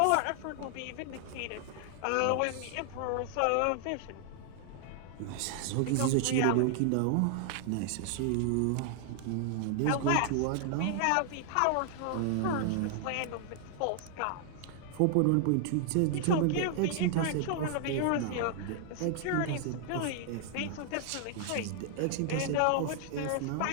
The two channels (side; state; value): both; different; correlation 0.00